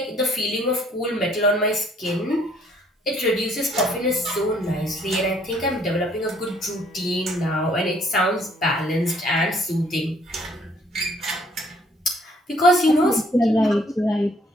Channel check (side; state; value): both; normal; correlation 0.63